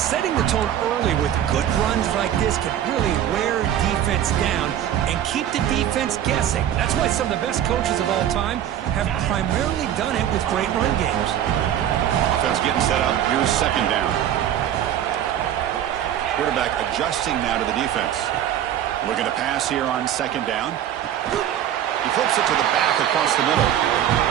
the tone early with good runs like this can really wear defense down and keep the defense guessing. That's why some of the best coaches of all time have primarily done it with great run games. Offense getting set up. Here's second down. Quarterback adjusting now to the defense. Looking to pass here on second down. He flips it to the back across the middle.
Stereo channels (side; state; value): left; quieter; 10.7 dB